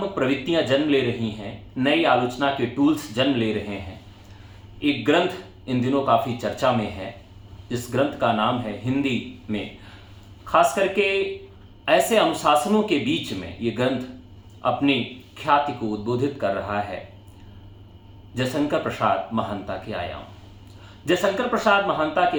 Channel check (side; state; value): both; identical; correlation 1.00